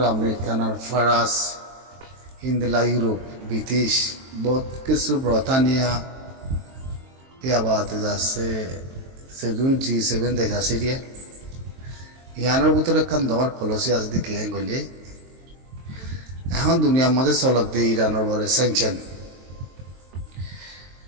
আমেরিকান ফরাস হিন্দলা ইউরোপ ব্রিটিশ বহুত কিছু ব্রিটানিয়া ইয়া বাদে যাচ্ছে সেগুন G7 দেশ আছে দিয়ে ইয়ানের ভিতরে একখান দর পলিসি আছে দিকে গেলে এখন দুনিয়ার মধ্যে চলক দিয়ে ইরানের বরে স্যাংশন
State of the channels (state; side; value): late; left; 23 ms